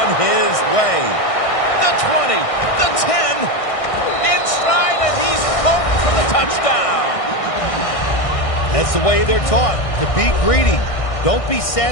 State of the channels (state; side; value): late; right; 1.6 ms